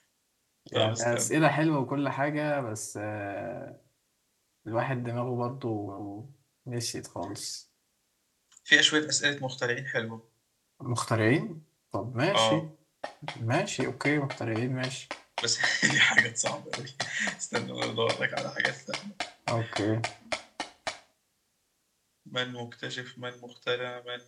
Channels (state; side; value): identical; both; correlation 1.00